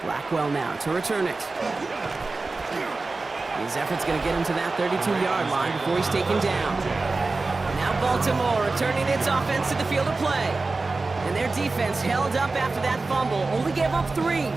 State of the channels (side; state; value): left; quieter; 3.6 dB